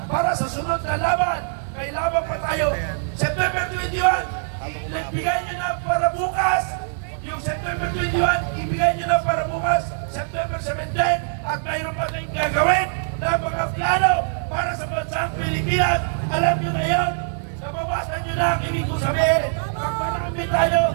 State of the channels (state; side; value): silent; left; digital silence